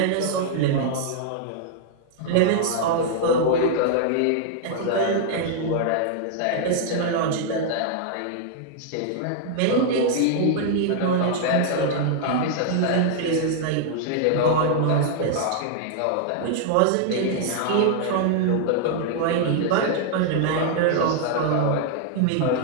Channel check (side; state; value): both; different; correlation -0.01